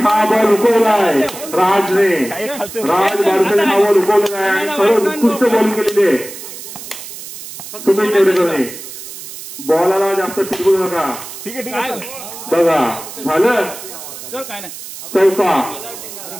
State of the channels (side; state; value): right; noise; hiss, 12 dB below the sound